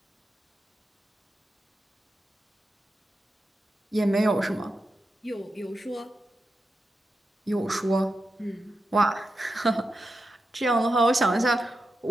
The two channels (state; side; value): normal; both; correlation 0.89